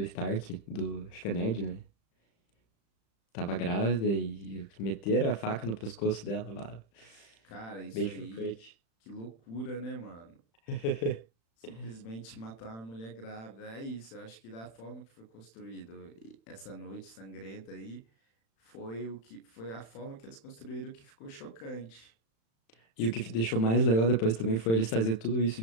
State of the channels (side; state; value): right; late; 35 ms